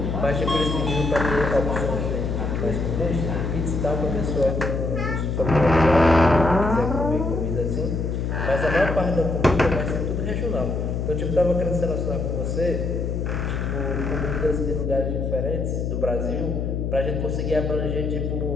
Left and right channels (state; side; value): noise; left; hum, 1 dB below the sound